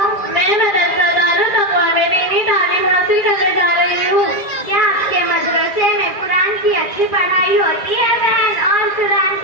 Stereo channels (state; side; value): late; right; 2.4 ms